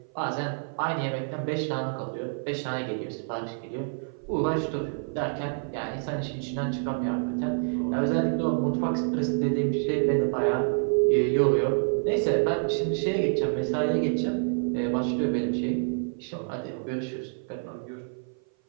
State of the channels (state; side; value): silent; left; 56 dB below the other